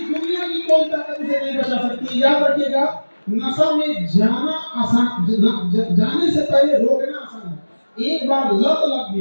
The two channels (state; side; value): inverted; both; correlation -1.00